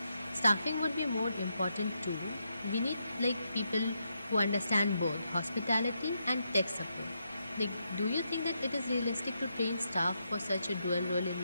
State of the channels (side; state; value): both; inverted; correlation -0.82